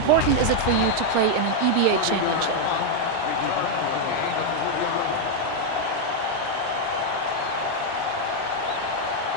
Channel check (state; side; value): different; both; correlation 0.00